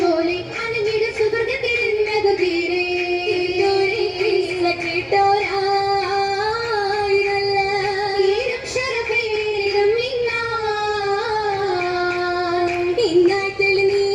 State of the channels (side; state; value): both; identical; correlation 1.00